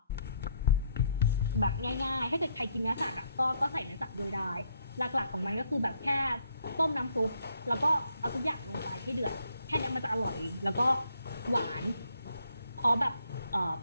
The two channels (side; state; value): both; inverted; correlation -0.71